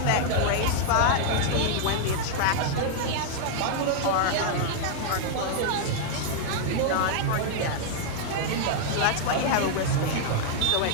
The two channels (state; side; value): different; both; correlation -0.01